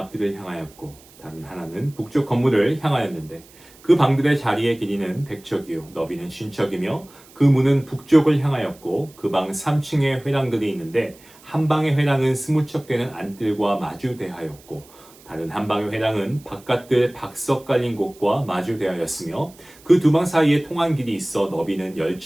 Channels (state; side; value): noise; right; hiss, 25 dB below the sound